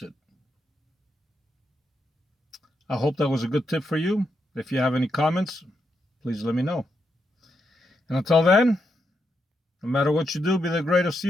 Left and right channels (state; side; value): normal; both; correlation 0.82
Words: it. I hope that was a good tip for you. If you have any comments, please let me know. And until then, no matter what you do, be the greatest